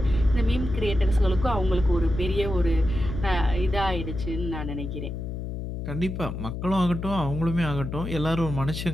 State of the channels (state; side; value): noise; left; hum, 5 dB below the sound